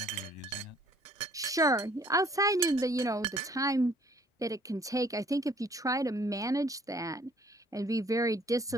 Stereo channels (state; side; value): normal; both; correlation 0.59